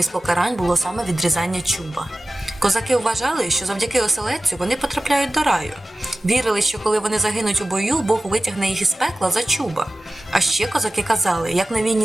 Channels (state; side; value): normal; both; correlation 0.95